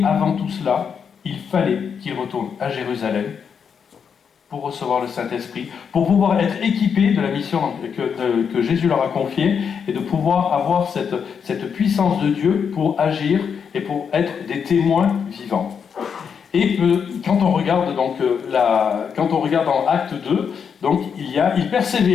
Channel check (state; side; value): quieter; right; 6.8 dB